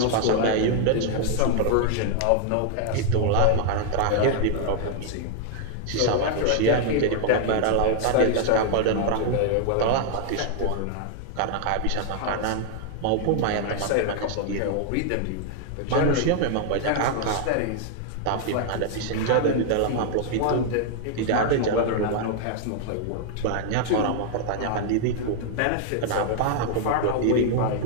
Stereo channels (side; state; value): both; different; correlation 0.00